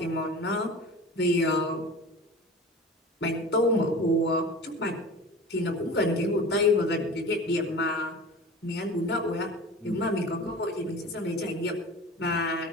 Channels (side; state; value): both; normal; correlation 0.36